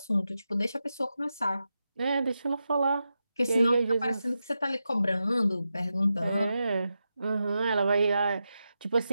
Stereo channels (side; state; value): both; inverted; correlation -0.89